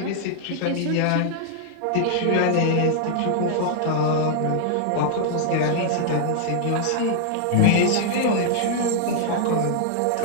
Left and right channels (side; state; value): both; different; correlation -0.01